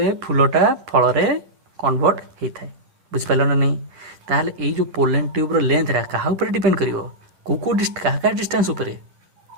फूलटा फल कन्वर्ट होता है बुझिपार ना नहीं ताहले ये जो पोलेन ट्यूब लेंथ रा क्या डिपेंड कर क्या डिस्टेंस उपरे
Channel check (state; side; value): late; left; 11 ms